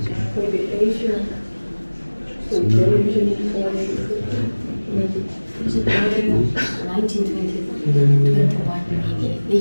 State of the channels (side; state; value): both; inverted; correlation -1.00